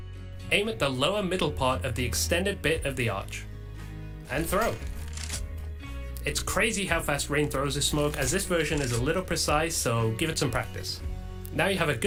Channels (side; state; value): both; identical; correlation 1.00